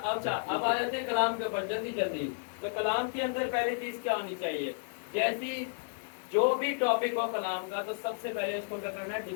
आ जाते हैं कलाम के ऊपर जल्दी। तो कलाम के अंदर पहली चीज क्या होनी चाहिए? जैसी जो भी टॉपिक हो कलाम का, तो सबसे पहले उसको क्या करना है?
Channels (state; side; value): silent; right; digital silence